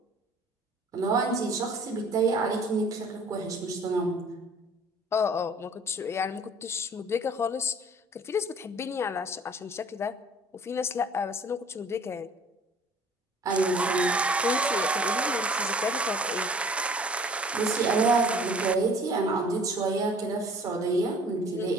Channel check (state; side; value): normal; both; correlation 0.51